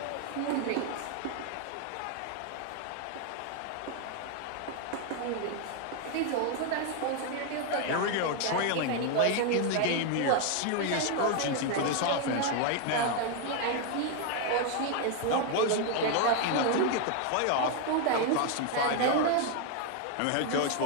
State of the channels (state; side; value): different; both; correlation 0.00